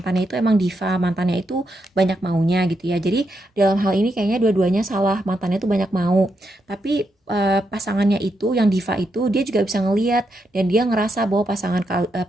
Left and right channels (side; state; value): both; normal; correlation 0.82